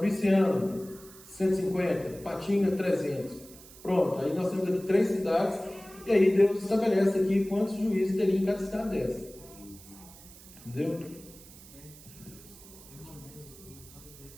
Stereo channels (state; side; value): noise; right; hiss, 20 dB below the sound